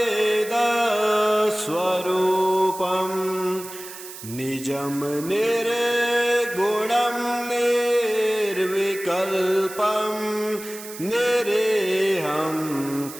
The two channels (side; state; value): right; noise; hiss, 13 dB below the sound